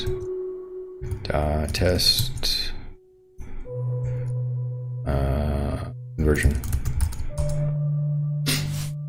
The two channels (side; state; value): both; identical; correlation 1.00